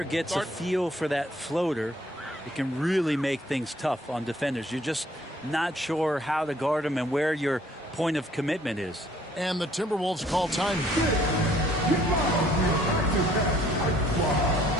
gets a feel for that floater, it can really make things tough on defenders. You're just not sure how to guard them and where your point of commitment is. And the Timberwolves call time.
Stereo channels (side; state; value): both; normal; correlation 0.61